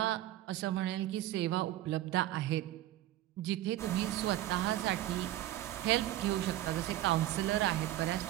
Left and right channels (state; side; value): quieter; left; 14.3 dB